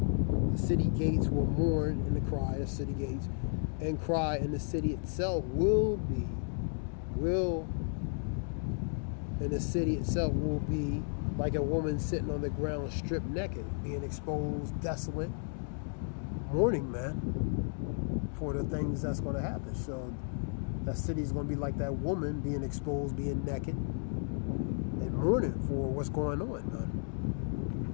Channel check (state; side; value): silent; right; 55 dB below the other